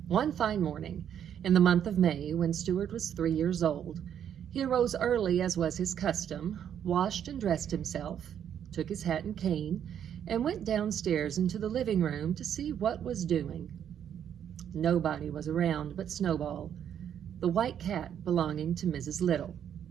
One fine morning in the month of May, when Stuart was 3 years old, he arose early as was his custom, washed and dressed himself, took his hat and cane, and went downstairs into the living room to see what was doing. Nobody was around but Snowball, the white cat belonging to Mrs. Little.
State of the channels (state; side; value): quieter; left; 9.2 dB